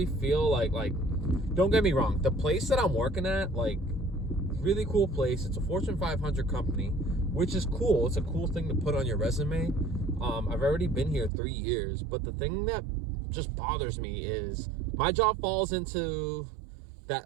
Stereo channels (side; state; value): left; drops out; at 11.3 s